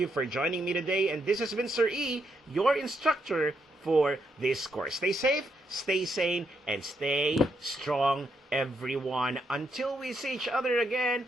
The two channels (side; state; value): both; normal; correlation 0.78